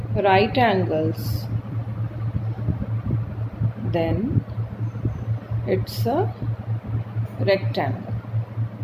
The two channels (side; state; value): both; identical; correlation 1.00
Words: right angles, then it's a rectangle.